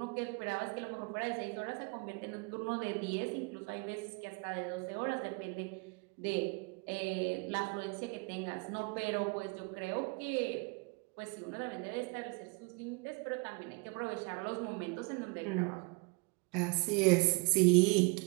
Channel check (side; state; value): left; quieter; 29.9 dB